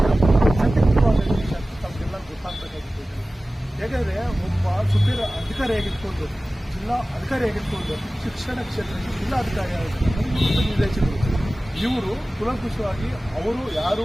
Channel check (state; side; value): normal; both; correlation 0.97